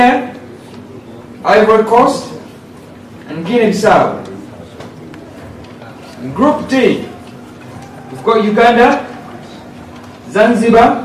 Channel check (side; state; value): both; identical; correlation 1.00